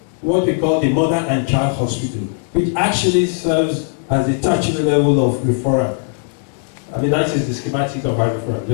what we call the Mother and Child Hospital, which actually serves as the tertiary level of referral. I mean, that is the schematic of our referral.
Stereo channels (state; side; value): silent; right; 61 dB below the other